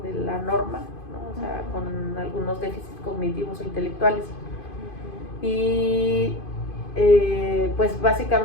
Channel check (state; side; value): late; right; 2.5 ms